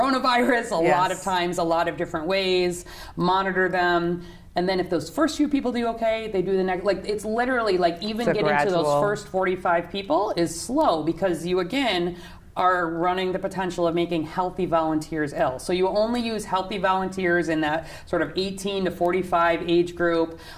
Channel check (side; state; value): both; identical; correlation 1.00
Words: a lot of times, a lot of different ways. Monitor them. And then if those first few people do okay, they do the next. Like, it's literally like even getting to those first 45 people is slow because you, again, are running the potential of making healthy volunteers ill. So you only use healthy volunteers in that sort of 18 to 45 age group,